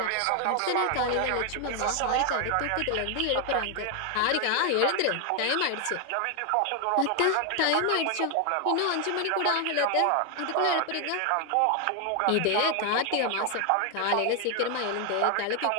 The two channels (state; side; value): different; both; correlation 0.00